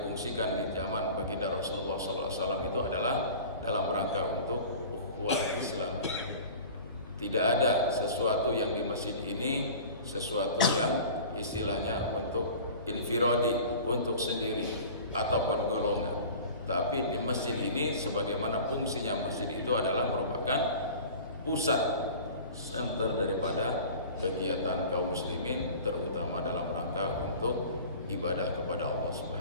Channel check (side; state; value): both; inverted; correlation -0.40